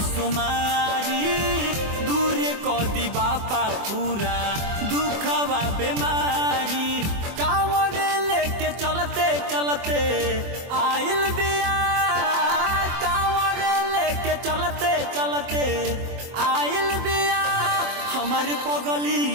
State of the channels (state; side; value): late; left; 24 ms